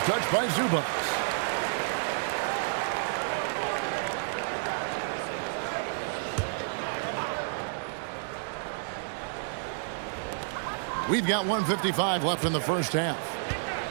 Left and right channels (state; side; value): silent; left; digital silence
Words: Touched by Zubats. We've got 1:55 left in the first half.